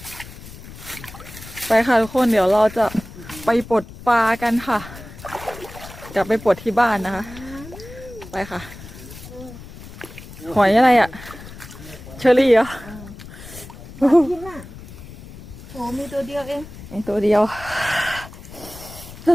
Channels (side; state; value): left; noise; rumble, 16 dB below the sound